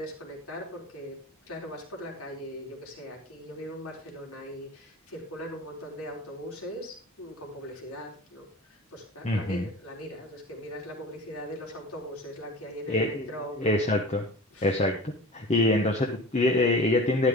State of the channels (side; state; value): both; normal; correlation 0.37